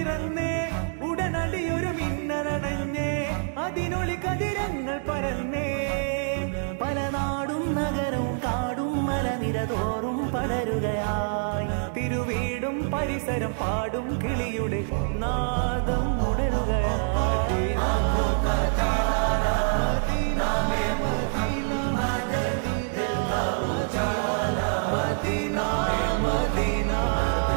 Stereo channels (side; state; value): left; silent; 57 dB below the other